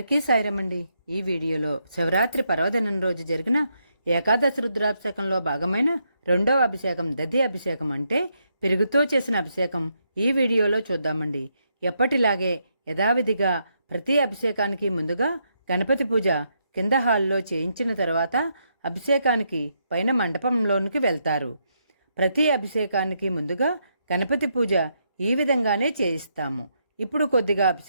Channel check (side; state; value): both; inverted; correlation -0.79